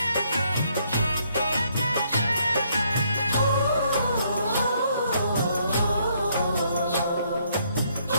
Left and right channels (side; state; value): both; inverted; correlation -0.70